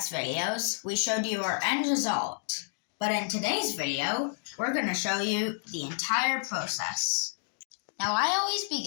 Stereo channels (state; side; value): silent; right; 58 dB below the other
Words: videos, we showed you our end result. But in today's video, we're going to show you the entire process. Now I always